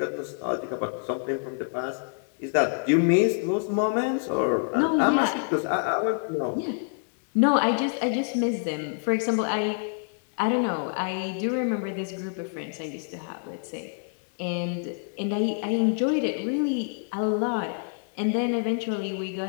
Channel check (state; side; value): silent; right; 60 dB below the other